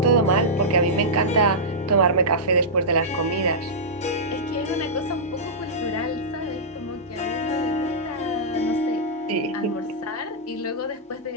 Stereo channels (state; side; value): normal; both; correlation -0.12